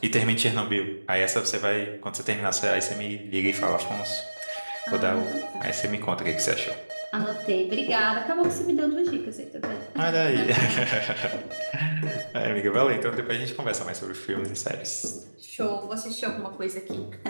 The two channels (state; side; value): inverted; both; correlation -1.00